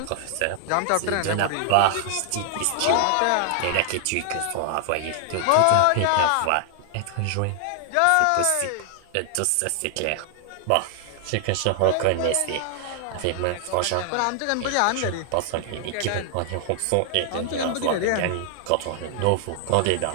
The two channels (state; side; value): different; both; correlation 0.00